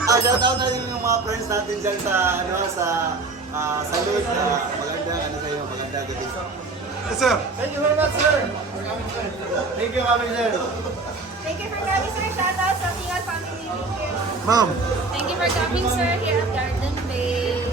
Shoutout na rin yung mga friends natin dyan sa salud. Maganda, sa iyo, maganda gabi. Yes, sir. Thank you very much sir. Thank you kami sir. Thank you for coming, sir. Shoutout sa Tingal family. Thank you. Ma'am. Thank you for coming, sir, here at Garden Bay.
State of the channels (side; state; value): left; quieter; 3.6 dB